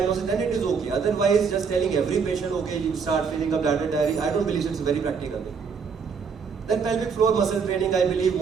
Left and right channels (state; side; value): quieter; left; 5.8 dB